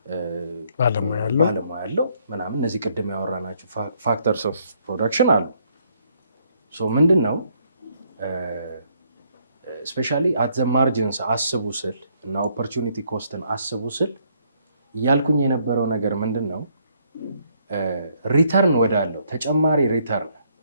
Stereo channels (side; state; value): both; inverted; correlation -0.70